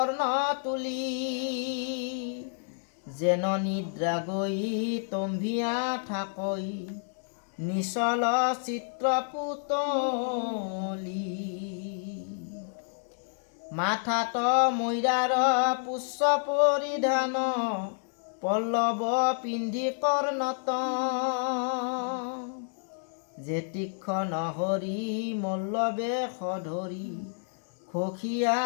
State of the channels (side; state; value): right; silent; digital silence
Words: তুলি যেন নিদ্ৰা গৈ তম্ভিয়া থাকৈ নিচল চিত্ৰ পুতলি মাথাত মৈৰাৰ পুষ্প পৰিধান পল্লৱ পিন্ধি কৰ্ণত যে তীক্ষ্ণ হৰি মল্লবে সধৰি খখিয়া